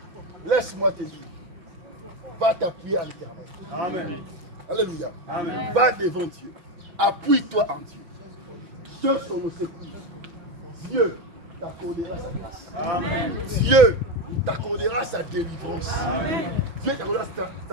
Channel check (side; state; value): left; late; 6.0 ms